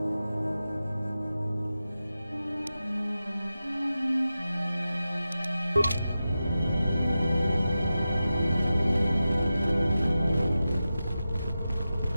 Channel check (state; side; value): inverted; both; correlation -0.92